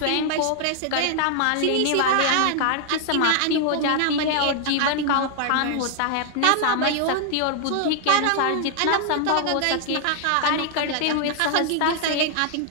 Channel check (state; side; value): different; both; correlation 0.00